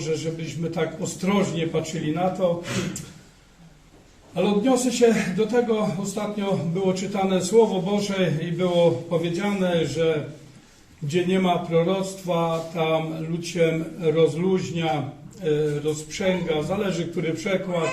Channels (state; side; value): identical; both; correlation 1.00